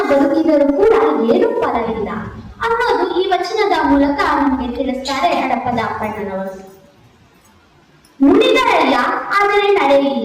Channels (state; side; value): identical; both; correlation 1.00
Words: ಬದುಕಿದರೂ ಕೂಡ ಏನು ಫಲ ಇಲ್ಲ ಅನ್ನೋದು ಈ ವಚನದ ಮೂಲಕ ನಮಗೆ ತಿಳಿಸ್ತಾರೆ ಹಡಪದ ಅಪ್ಪಣ್ಣನವರು. ನುಡಿದರಯ್ಯ ಆದರೆ